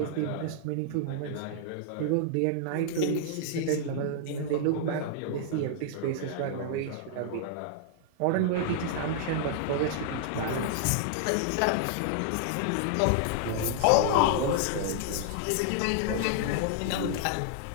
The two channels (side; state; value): both; different; correlation -0.01